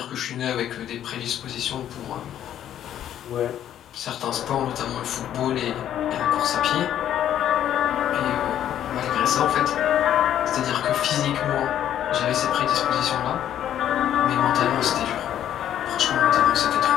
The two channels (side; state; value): right; quieter; 10.8 dB